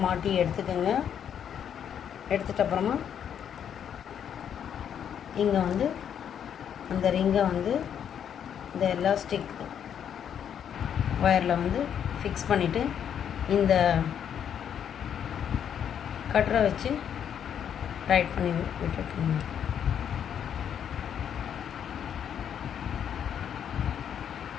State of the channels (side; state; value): right; quieter; 8.7 dB